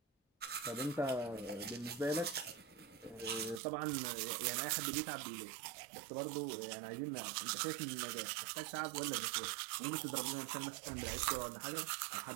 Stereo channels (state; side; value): drops out; left; at 3.6 s